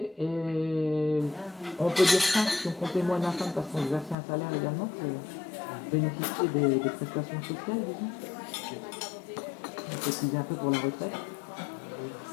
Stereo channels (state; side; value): drops out; right; at 4.2 s